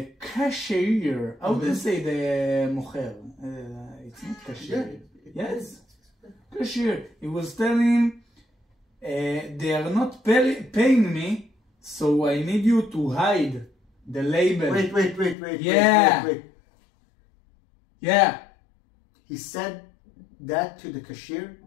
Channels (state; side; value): drops out; right; at 15.4 s